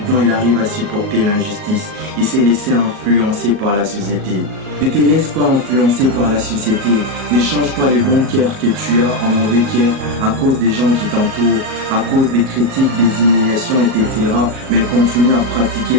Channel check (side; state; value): left; late; 38 ms